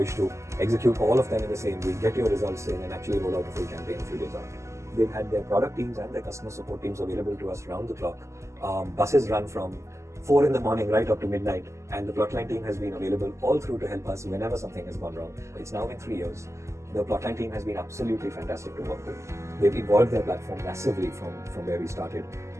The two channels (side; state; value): left; late; 0.14 ms